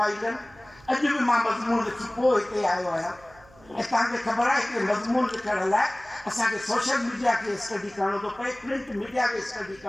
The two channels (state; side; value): noise; right; hum, 26 dB below the sound